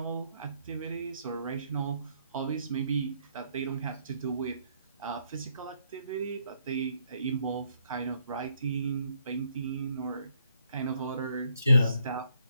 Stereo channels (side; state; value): both; inverted; correlation -0.70